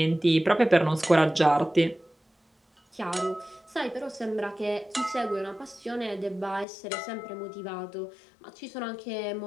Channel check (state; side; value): drops out; right; at 6.7 s